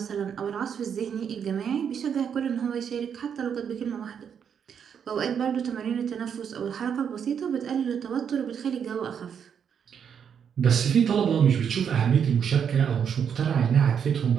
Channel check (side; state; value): left; quieter; 7.7 dB